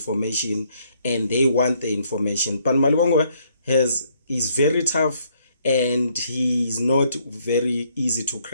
and they want the information. But Malibongwe is very tough and he's not very easy to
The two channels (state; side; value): inverted; both; correlation -0.68